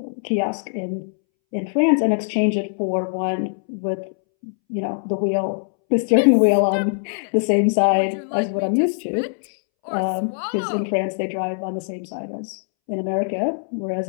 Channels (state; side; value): silent; right; 64 dB below the other